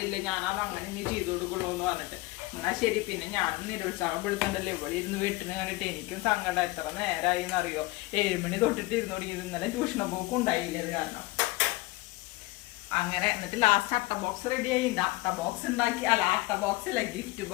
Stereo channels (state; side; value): quieter; right; 21.0 dB